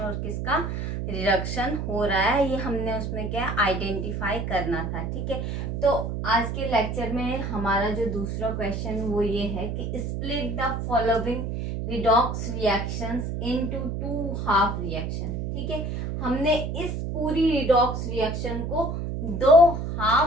किसका रिडक्शन हो रहा है, ये हमने उसमें क्या आइडेंटिफाई करना था। ठीक है, तो आज के लेक्चर में हमारा जो दूसरा क्वेश्चन वो ये है कि split the following redox reactions into two half reaction. ठीक है, हमने इस पूरी रिडॉक्स रिएक्शन को दो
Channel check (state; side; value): noise; right; hum, 3 dB below the sound